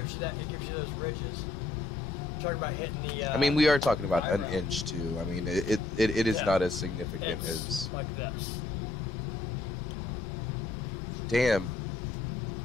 you those ridges. Talking about hitting the. I mean, we are talking about an eyebrow. inch too. I mean, it is Yeah. not as significant It's as. like this. Damn.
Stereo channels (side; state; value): right; quieter; 3.4 dB